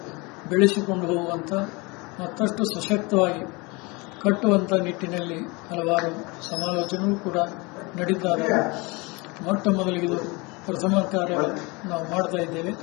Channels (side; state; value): right; quieter; 26.5 dB